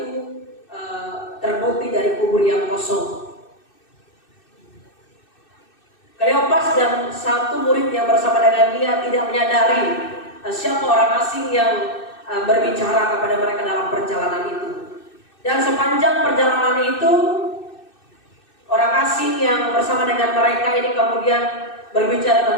terbukti dari kubur yang kosong. Kleopas dan satu murid yang bersama dengan dia tidak menyadari siapa orang asing yang berbicara kepada mereka dalam perjalanan itu. Dan sepanjang perjalanan itu, orang asing yang bersama dengan mereka ini kemudian berbicara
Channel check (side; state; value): right; late; 2.6 ms